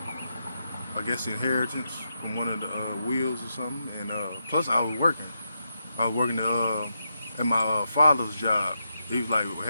I guess inheritance from one of the wheels or something. And plus I was working. I was working at my father's job. He was like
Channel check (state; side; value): inverted; both; correlation -0.84